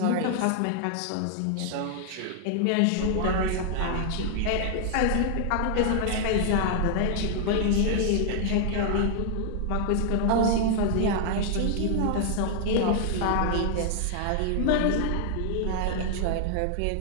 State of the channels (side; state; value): both; different; correlation 0.00